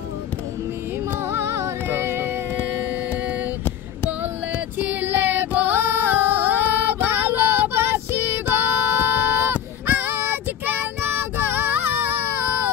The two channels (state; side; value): quieter; right; 9.6 dB